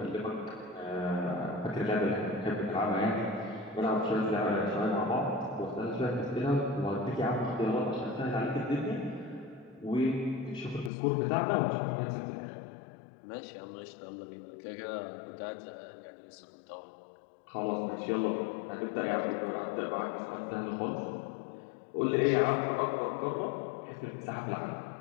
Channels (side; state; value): right; drops out; at 10.9 s